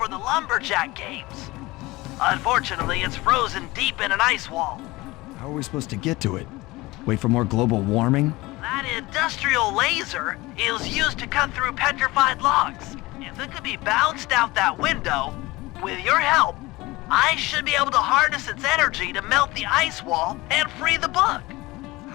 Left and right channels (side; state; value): right; quieter; 20.9 dB